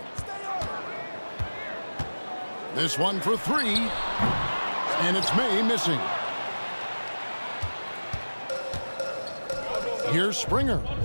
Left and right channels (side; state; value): both; inverted; correlation -1.00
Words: This one for 3. And it's May missing. Here's Springer.